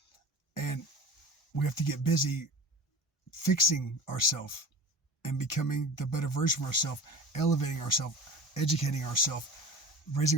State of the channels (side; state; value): both; normal; correlation 0.36